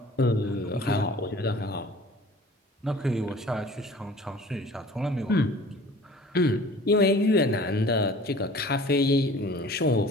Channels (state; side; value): normal; both; correlation 0.47